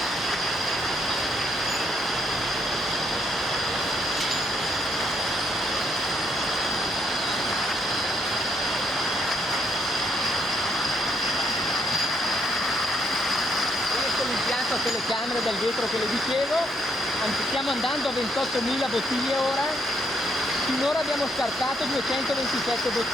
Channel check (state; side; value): normal; both; correlation 0.75